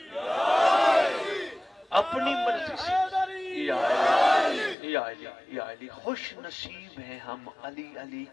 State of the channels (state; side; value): drops out; right; at 4.8 s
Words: اپنی مرضی سے یا علی یا علی یا علی. خوش نصیب ہیں ہم علی علی